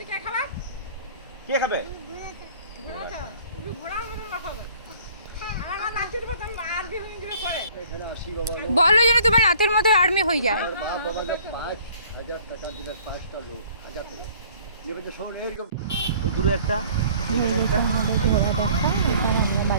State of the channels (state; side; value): inverted; both; correlation -0.54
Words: কে খাবে? বলো যেন তোমার রাতের মধ্যে আর্মি হয়ে যায়। বাপ আমাদের 5,000 টাকা দিলে 5টা লোক 1000 টাকা নেবে। তো শোন এরকম ওই দূরে একটা, এখানে একটা। ঘোড়া দেখা, এবার আমরা আমরা